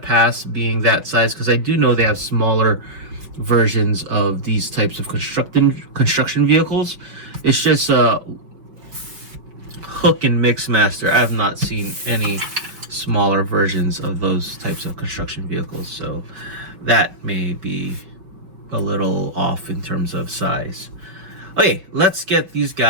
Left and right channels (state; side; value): late; left; 5.3 ms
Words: pass being that size, because I do know they have smaller versions of these types of construction vehicles. It's just Hook and Mixmaster. I have not seen any smaller versions of those types of construction vehicles, so that may be a little off in terms of size. Okay, let's get these